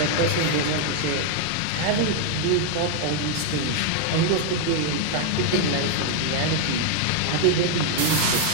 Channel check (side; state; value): both; different; correlation 0.00